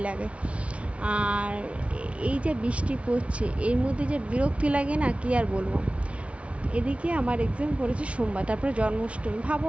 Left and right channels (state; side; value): late; left; 0.062 ms